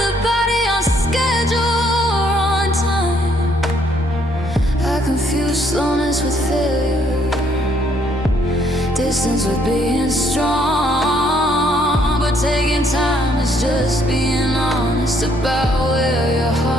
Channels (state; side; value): normal; both; correlation 0.68